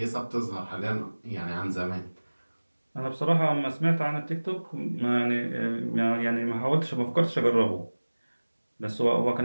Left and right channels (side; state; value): both; inverted; correlation -1.00